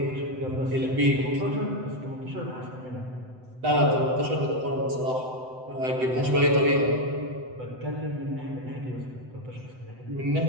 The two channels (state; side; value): late; left; 7.9 ms